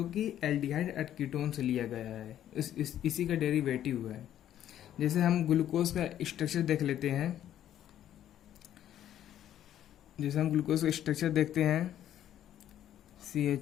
कि एल्डिहाइड और कीटोन से लिया गया है। इसी का डेरिवेटिव है। जैसे हम ग्लूकोज का स्ट्रक्चर देख लेते हैं, जैसे हम ग्लूकोज का स्ट्रक्चर देखते हैं,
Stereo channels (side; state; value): right; quieter; 11.3 dB